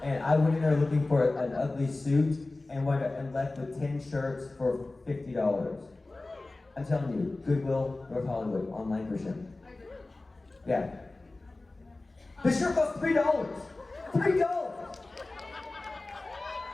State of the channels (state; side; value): quieter; right; 3.1 dB